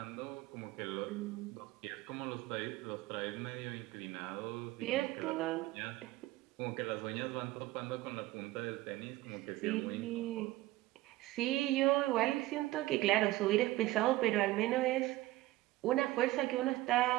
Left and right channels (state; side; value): quieter; left; 17.5 dB